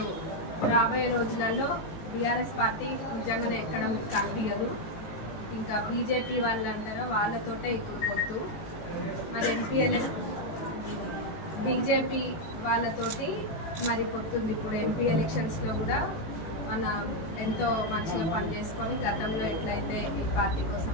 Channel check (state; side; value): late; right; 18 ms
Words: రాబోయే రోజులలో బీఆర్ఎస్ పార్టీ నిజంగానే ఎక్కడం కనిపించదు. ఇంకా బీజేపీ వాళ్ళు అంటారో వాళ్ళతోటే ఇప్పుడు పొత్తు. మరి ఎంపీఎల్ఏ బీజేపీ వాళ్ళతోటి మరి పొత్తుంది. ఇప్పుడు ఎంపీ ఎలక్షన్స్లో కూడా మన ఎంతో మంచిగా పనిచేసుకొని గతంలో ఎట్లయితే ఈ పార్టీ కోసం